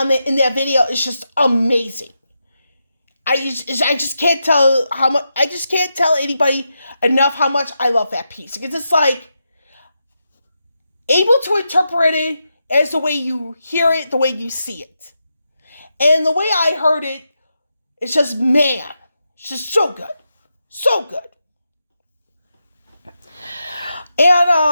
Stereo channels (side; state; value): both; inverted; correlation -0.86